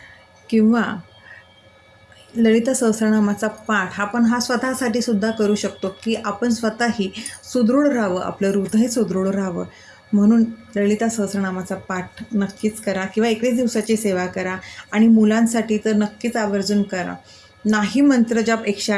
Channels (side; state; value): both; identical; correlation 1.00